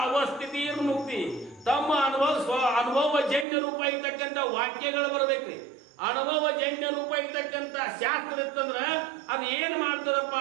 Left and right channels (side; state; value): left; drops out; at 3.5 s